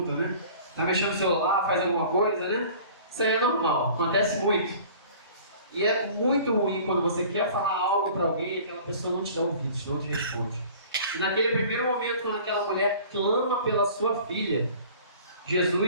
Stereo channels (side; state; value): both; inverted; correlation -0.47